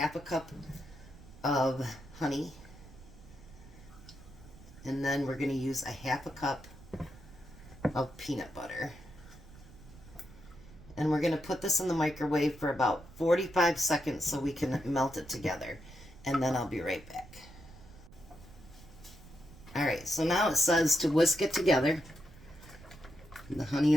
a cup of honey. And then we're going to use a half a cup of peanut butter. And we're going to put this in the microwave for about 45 seconds so we can melt it together. And then I'll be right back. Alright, so now it says to whisk it together. The honey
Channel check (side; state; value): right; noise; rumble, 20 dB below the sound